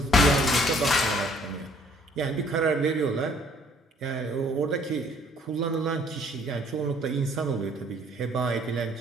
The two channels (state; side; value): normal; both; correlation 0.60